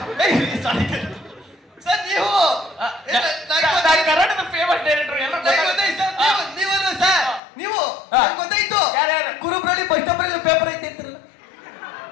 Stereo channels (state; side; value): drops out; right; at 7.4 s